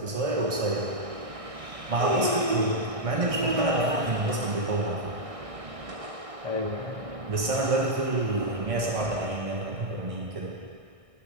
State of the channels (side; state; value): left; late; 1.6 ms